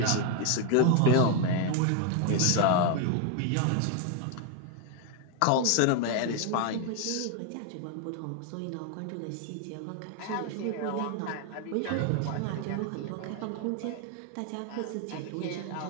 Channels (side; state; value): both; different; correlation 0.01